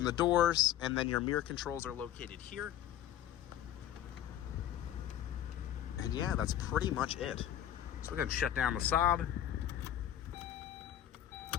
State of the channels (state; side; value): quieter; right; 11.5 dB